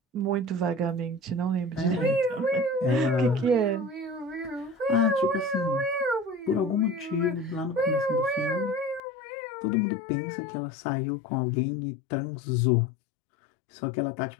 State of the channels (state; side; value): drops out; right; at 9.0 s